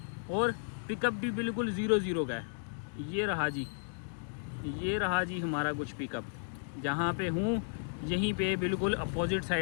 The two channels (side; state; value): right; silent; digital silence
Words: और पिकअप भी बिल्कुल 0 का है। ये रहा जी हमारा कुछ पिकअप। जहाँ पे हूँ यहीं पे बिल्कुल अपोजिट